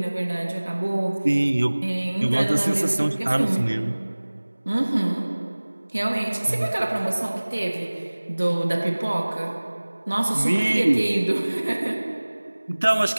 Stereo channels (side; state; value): both; inverted; correlation -1.00